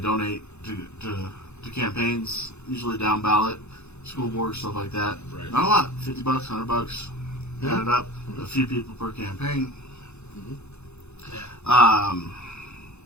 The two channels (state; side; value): late; right; 0.81 ms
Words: to campaigns, usually down ballot, school board, stuff like that. Right. Not a lot, $50, $100. Add it up. A few people per campaign. I